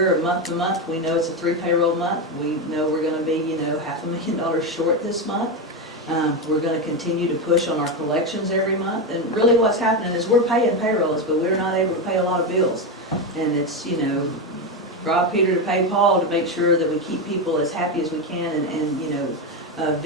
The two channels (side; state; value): both; normal; correlation 0.12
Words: month to month. We know it's a 3 payroll month. We know we're going to be, $500,000 short this month. We're going to continue to push on our collections every month. And really what's happening is we're paying payrolls, but we're not able to pay a lot of bills. And it's, rob Peter to pay Paul to make sure that we keep people as happy as we can, and